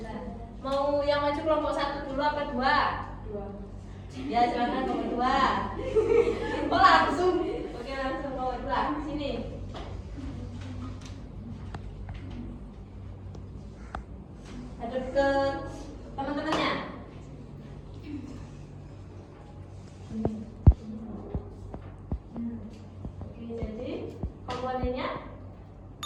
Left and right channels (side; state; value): both; identical; correlation 1.00